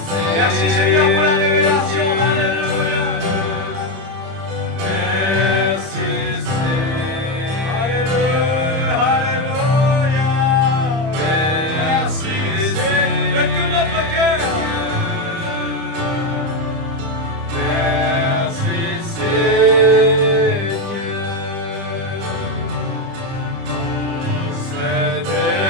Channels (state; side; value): late; left; 30 ms